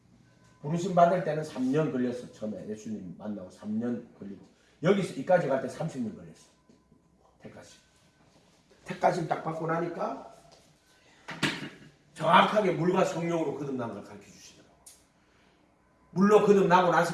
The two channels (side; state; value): both; identical; correlation 1.00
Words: 부르심 받을 때는 3년 걸렸어. 처음에 예수님 만나고 3년 걸리고 여기서 이까지 갈 때 30년 걸렸어. 택하심. 택하심 딱 받고 나니까 정확하게 물과 성령으로 거듭난 걸 가르쳐 주시더라고. 물로 거듭나고